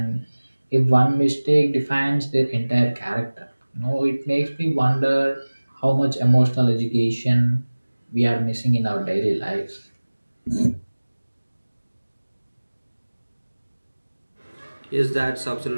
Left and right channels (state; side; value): inverted; both; correlation -1.00